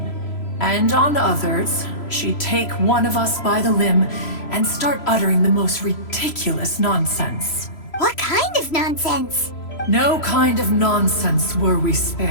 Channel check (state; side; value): late; right; 3.0 ms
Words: and on others, she'd take one of us by the limb and start uttering the most ridiculous nonsense. What kind of nonsense? No kind of nonsense were we